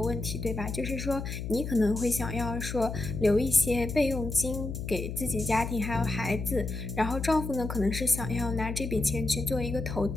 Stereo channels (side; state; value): left; noise; hum, 6 dB below the sound